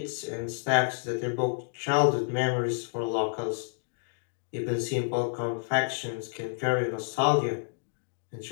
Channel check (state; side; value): silent; right; digital silence